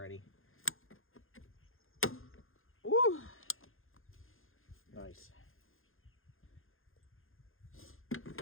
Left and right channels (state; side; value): late; right; 0.60 ms